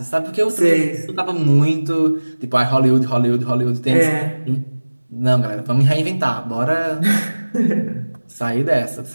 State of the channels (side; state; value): both; inverted; correlation -1.00